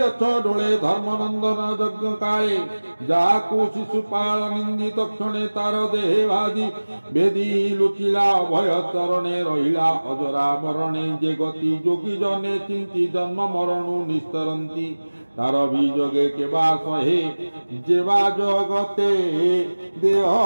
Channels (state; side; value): inverted; both; correlation -1.00